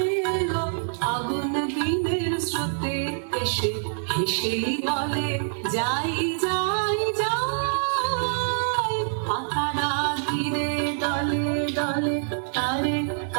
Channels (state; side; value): silent; left; digital silence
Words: হেসে বলে যাই যাই যাই, পাতারা ধীরে দলে দলে তারে